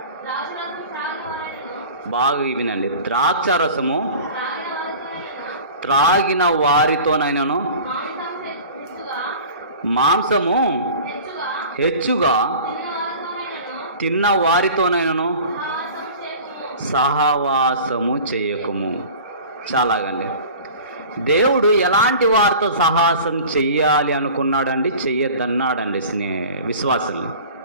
బాగా వినండి, ద్రాక్షారసము త్రాగిన వారితోనైనను మాంసము హెచ్చుగా తిన్న వారితోనైనను సహవాసము చేయకుము. చాలాగండి, దేవుడు ఎలాంటి వారితో సహవాసం చెయ్యాలి అనుకున్నాడండి, చెయ్యొద్దన్నాడండి విశ్వాసులు.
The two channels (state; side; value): inverted; both; correlation -0.41